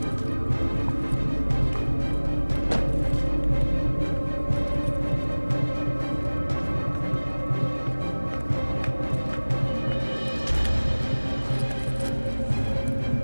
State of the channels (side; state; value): both; inverted; correlation -1.00